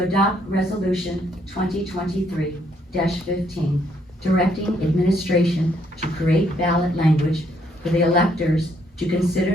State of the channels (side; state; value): both; normal; correlation 0.70